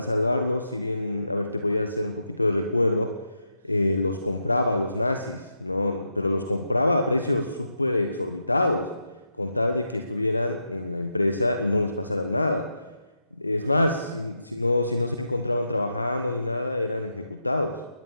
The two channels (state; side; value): inverted; both; correlation -0.85